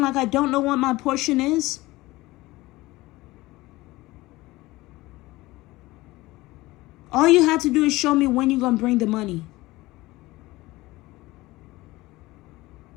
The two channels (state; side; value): quieter; right; 19.5 dB